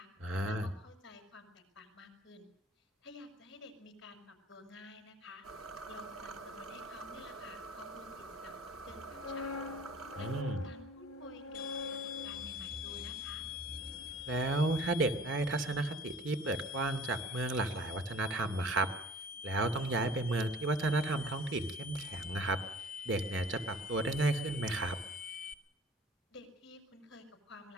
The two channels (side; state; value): both; normal; correlation 0.48